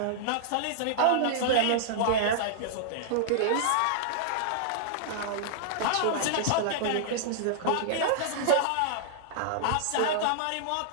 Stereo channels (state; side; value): different; both; correlation -0.01